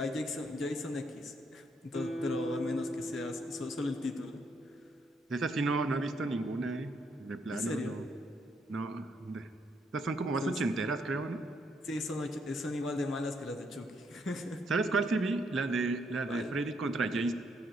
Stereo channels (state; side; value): normal; both; correlation 0.74